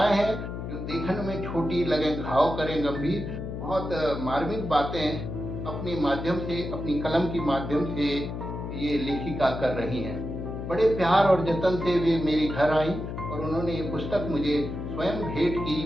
हैं जो देखने में छोटी लगे, घाव करें गंभीर। बहुत मार्मिक बातें अपने माध्यम से, अपनी कलम के माध्यम से ये लेखिका कर रही हैं। बड़े प्यार और जतन से वे मेरे घर आई और उन्होंने ये पुस्तक मुझे स्वयं भेंट की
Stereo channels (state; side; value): noise; left; hum, 6 dB below the sound